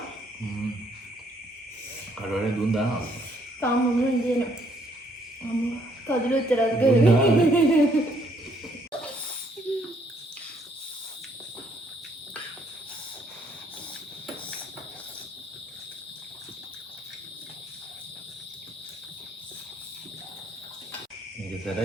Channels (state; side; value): normal; both; correlation 0.67